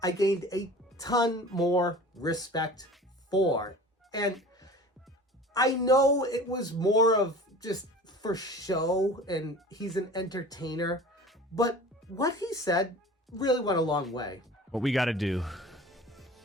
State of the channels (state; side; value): normal; both; correlation 0.41